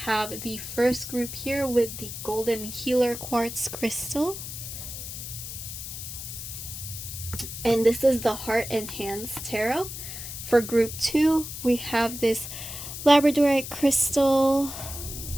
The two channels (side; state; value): left; noise; hiss, 9 dB below the sound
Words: the first group here with the Golden Healer Quartz Crystal. And this is the Heart and Hands Tarot. For group 2, we have this Labradorite Crystal